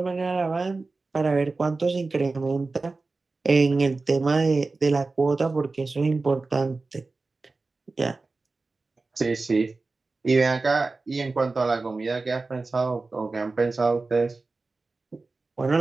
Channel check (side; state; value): left; quieter; 3.7 dB